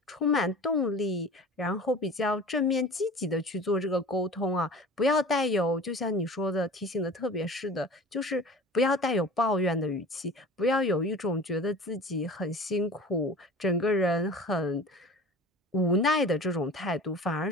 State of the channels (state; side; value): normal; both; correlation 0.40